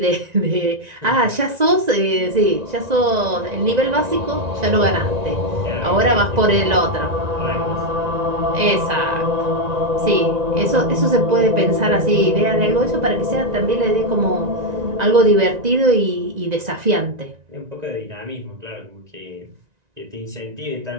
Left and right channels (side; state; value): left; late; 1.9 ms